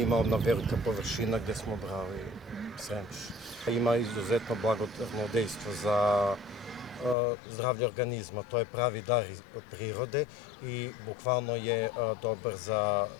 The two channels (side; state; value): right; drops out; at 7.2 s